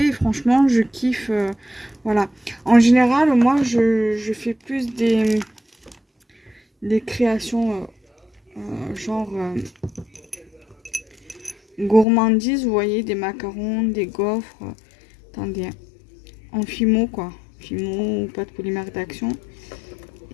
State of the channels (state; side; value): drops out; right; at 12.1 s